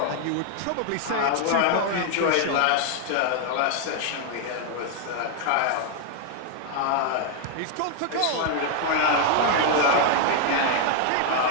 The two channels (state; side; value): different; both; correlation 0.00